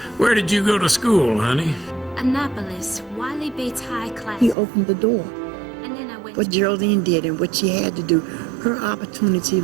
Where did you go to school, honey? Annapolis, Wiley Bates High Class. He opened the door. And then I went what Geraldine did and what she had to do, her opportunity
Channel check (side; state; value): left; drops out; at 4.5 s